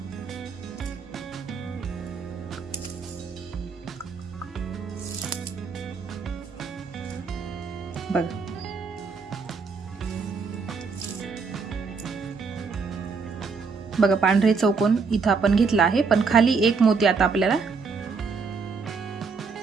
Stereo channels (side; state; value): left; quieter; 4.9 dB